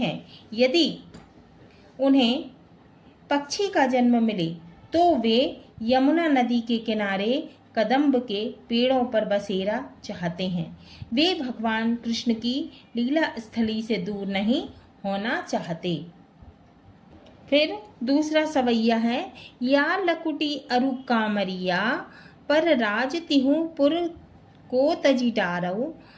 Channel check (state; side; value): identical; both; correlation 1.00